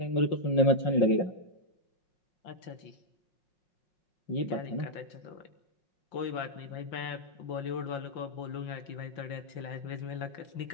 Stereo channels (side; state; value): right; late; 5.8 ms